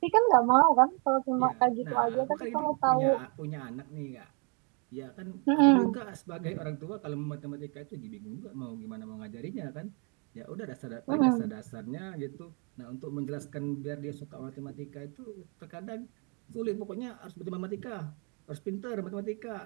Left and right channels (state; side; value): quieter; left; 35.1 dB